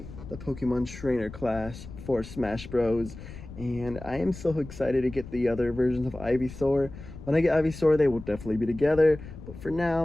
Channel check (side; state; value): left; noise; rumble, 14 dB below the sound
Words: the Pokemon Trainer class for Smash Bros. And I am so excited to get the other versions of Ivysaur. When I get Ivysaur, they will definitely be together, but for